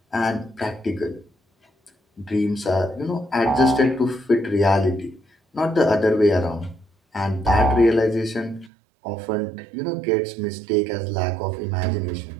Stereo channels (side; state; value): left; drops out; at 8.7 s